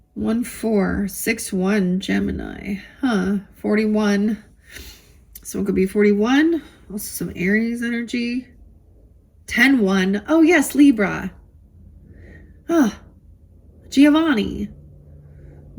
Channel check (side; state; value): both; identical; correlation 1.00